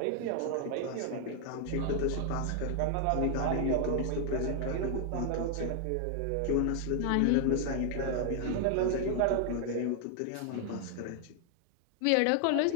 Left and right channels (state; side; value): different; both; correlation 0.00